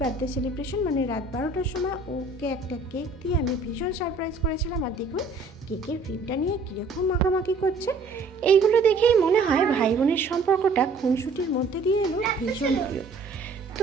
বার্থডে সেলিব্রেশন, মানে রাত 12টার সময় ওকে একটা কেক দিয়ে আমি ভীষণ সারপ্রাইজ করেছিলাম। আর দেখুন কেকের ক্রিমটা নিয়ে কীরকম মাখামাখি করছে। এইগুলো দেখেই মনে হয় ভাই বোনের সম্পর্কটা খুনসুটির মধ্যে দিয়ে এলো ভীষণ প্রিয়।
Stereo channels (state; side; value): quieter; left; 3.6 dB